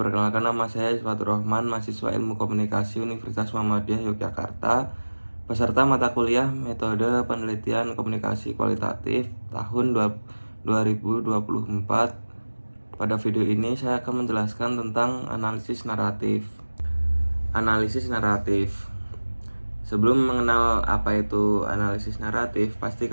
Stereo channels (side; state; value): both; inverted; correlation -1.00